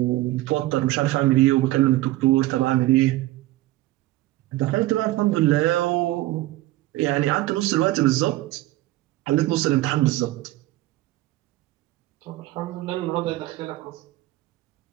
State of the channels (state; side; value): quieter; left; 17.0 dB